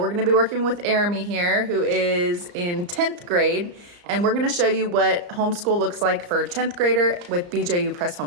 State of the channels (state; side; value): late; left; 34 ms